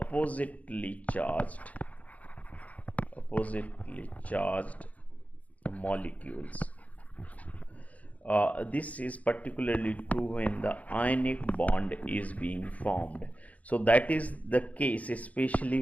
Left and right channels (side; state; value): right; late; 0.070 ms